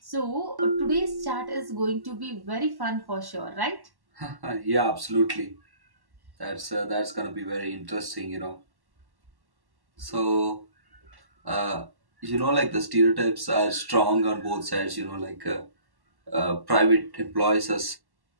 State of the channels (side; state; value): left; late; 1.1 ms